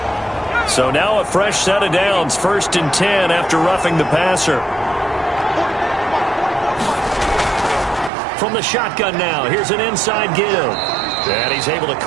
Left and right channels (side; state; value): left; drops out; at 8.1 s